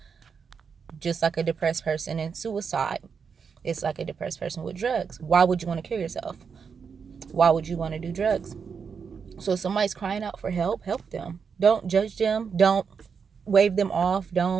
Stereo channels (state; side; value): quieter; left; 6.1 dB